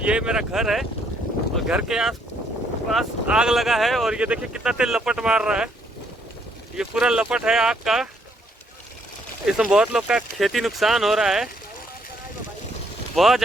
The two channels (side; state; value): both; normal; correlation 0.69